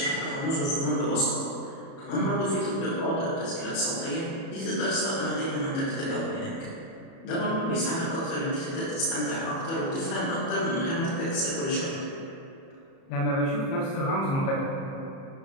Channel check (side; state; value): right; late; 37 ms